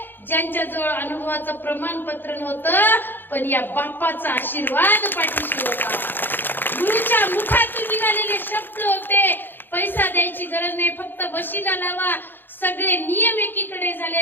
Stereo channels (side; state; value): right; late; 0.095 ms